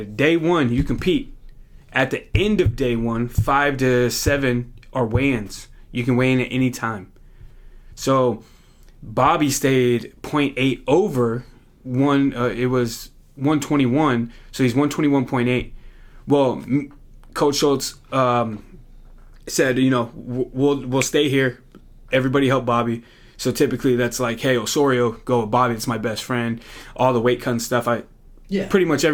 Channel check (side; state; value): both; identical; correlation 1.00